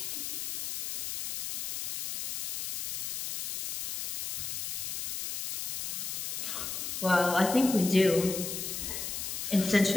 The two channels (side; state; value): left; noise; hiss, 3 dB below the sound